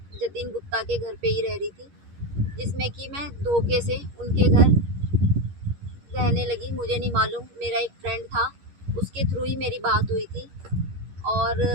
जतिन गुप्ता के घर पे ही रह रही थी, जिसमें कि मैं धोखे से उनके घर रहने लगी। मुझे नहीं मालूम, मेरा एक फ्रेंड था, उसके थ्रू ही मेरी बात हुई थी। और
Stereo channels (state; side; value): late; left; 11 ms